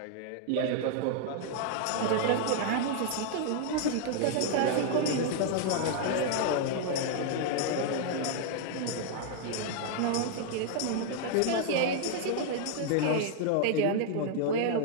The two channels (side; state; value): both; different; correlation 0.00